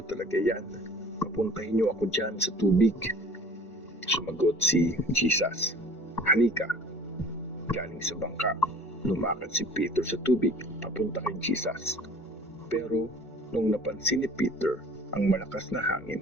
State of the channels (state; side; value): late; right; 2.1 ms